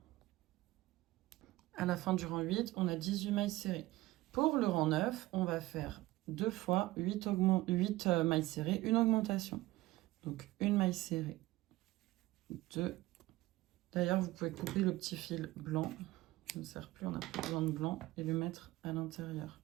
À la fin du rang 8, on a 18 mailles serrées. Pour le rang 9, on va faire 2 fois 8 mailles serrées, une augmentation. Donc une maille serrée, 2. D'ailleurs, vous pouvez couper le petit fil blanc, qui ne sert plus, on n'a plus besoin de blanc, et le mettre à l'intérieur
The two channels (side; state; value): left; quieter; 18.1 dB